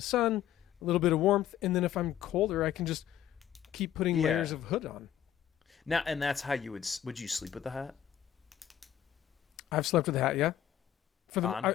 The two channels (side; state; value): right; quieter; 10.8 dB